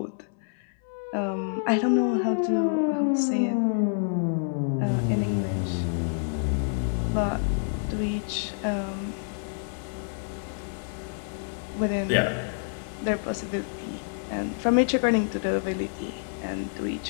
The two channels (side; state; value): right; silent; 60 dB below the other